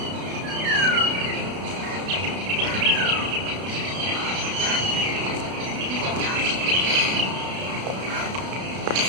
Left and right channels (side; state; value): left; late; 32 ms